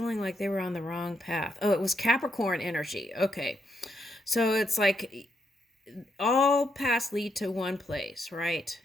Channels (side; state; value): both; normal; correlation 0.79